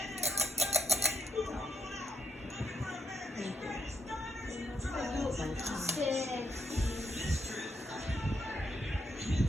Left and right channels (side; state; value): both; normal; correlation 0.78